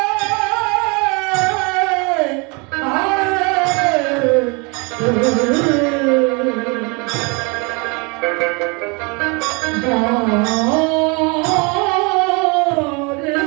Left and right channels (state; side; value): quieter; left; 30.7 dB